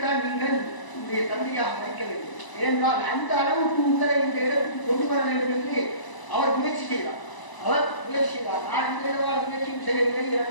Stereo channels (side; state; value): right; late; 1.0 ms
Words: நீங்கள் உங்களுடைய தந்தையாக வைக்க வேண்டும். ஏனென்றால் அந்த அளவுக்கு உங்களை இந்த இடத்துக்கு கொண்டு வர வேண்டும் என்று அவர் முயற்சி செய்தார். நான் இந்த இடவால் முயற்சியும் செய்யவில்லை.